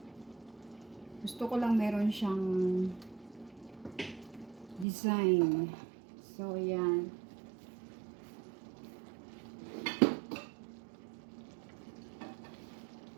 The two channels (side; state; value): left; drops out; at 4.9 s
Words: Gusto ko lang meron siyang design. So yan.